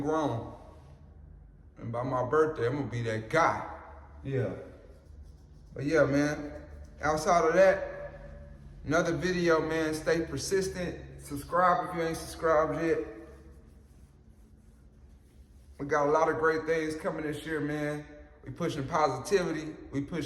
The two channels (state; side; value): identical; both; correlation 1.00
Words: grown. And by my birthday, I'm gonna be that guy. Yeah. But yeah, man. Outside of that, another video, man. Stay persistent. Subscribe if you ain't subscribed yet. We got a lot of great things coming this year, man. We pushing positivity. We